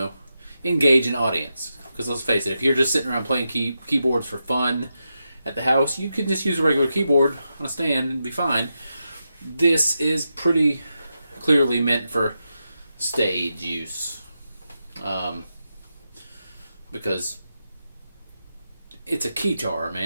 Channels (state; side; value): inverted; both; correlation -0.87